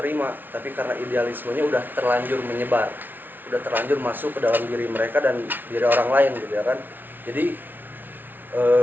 tapi karena idealismenya udah terlanjur menyebar, udah terlanjur masuk ke dalam diri mereka dan diri orang lain gitu ya kan. Jadi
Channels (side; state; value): left; late; 0.090 ms